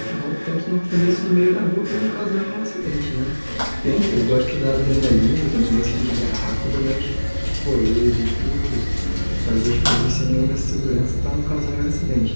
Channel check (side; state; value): both; inverted; correlation -1.00